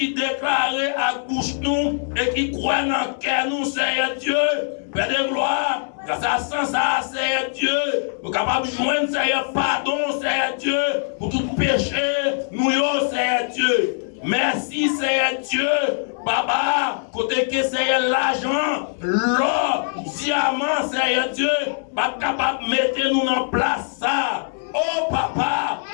déclarons à bouche nous et qui croient dans le cœur nous, Seigneur Dieu, Père de gloire, grâce à ça, Seigneur Dieu, nous sommes capables de joindre, Seigneur, pardon, Seigneur Dieu, pour tout péché, nous, Seigneur Dieu. Merci, Seigneur Dieu. Papa, côté que Seigneur l'argent, l'or, diamant, Seigneur Dieu, pas capable de mettre nous en place ça. Oh papa,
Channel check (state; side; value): silent; right; 62 dB below the other